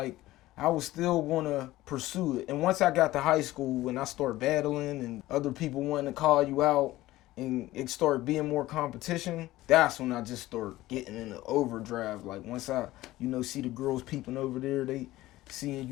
I was still gonna pursue it. And once I got to high school and I started battling and other people wanting to call you out, and it started being more competition, that's when I just started getting into overdrive. Like, once I, you know, see the girls peeping over there, they seeing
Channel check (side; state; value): right; quieter; 16.8 dB